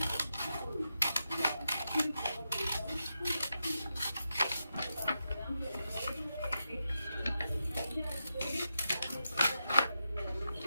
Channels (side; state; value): both; inverted; correlation -0.87